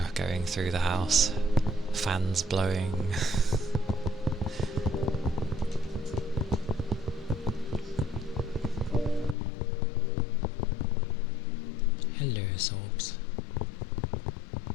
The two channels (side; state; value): right; drops out; at 9.3 s